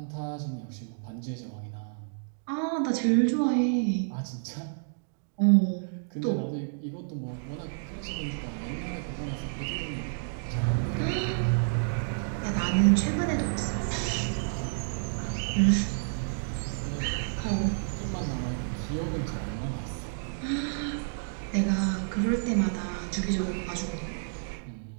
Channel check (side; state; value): left; silent; digital silence